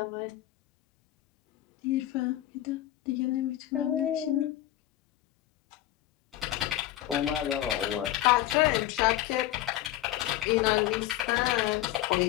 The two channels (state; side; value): quieter; right; 14.2 dB